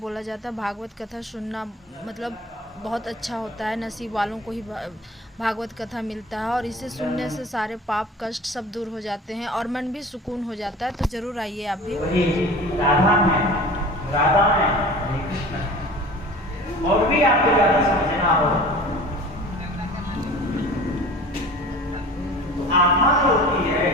जाता है भागवत कथा सुनना मतलब बहुत अच्छा होता है। नसीब वालों को ही भागवत कथा मिलता है, और इसे सुनने से सारे पाप कष्ट सब दूर हो जाते हैं और मन भी सुकून हो जाता है। तो ज़रूर आइए आप भी। राधा में हरे कृष्ण। और भी आपको ज़्यादा समझना हो तो आत्मा जो होती है,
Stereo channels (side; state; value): both; normal; correlation 0.40